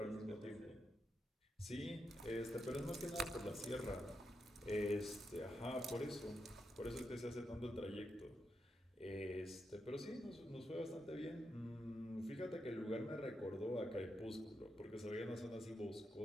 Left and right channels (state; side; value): normal; both; correlation 0.84